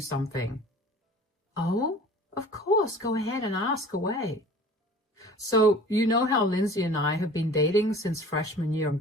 Oh, of course. Go ahead and ask away. So, you know how Lindsay and I have been dating since freshman year in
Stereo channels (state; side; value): normal; both; correlation 0.44